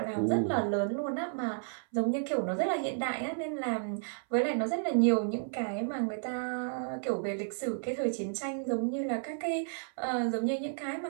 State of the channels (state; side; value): silent; left; 56 dB below the other